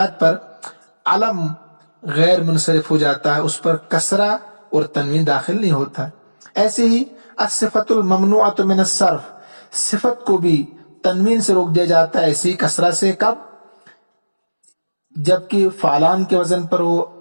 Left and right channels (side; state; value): both; inverted; correlation -1.00